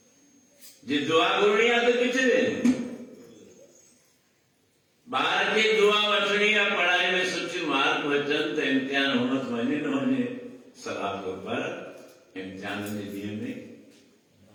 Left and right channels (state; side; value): identical; both; correlation 1.00